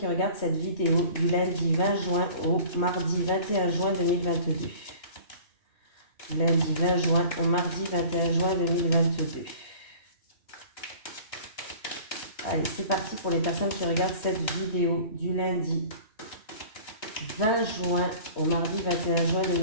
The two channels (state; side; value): late; right; 3.2 ms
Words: regardent cette vidéo du lundi 20 juin au mardi 21 juin 2022. Lundi 20 juin au mardi 21 juin 2022. Allez, c'est parti pour les personnes qui regardent cette vidéo du lundi 20 juin au mardi 21 juin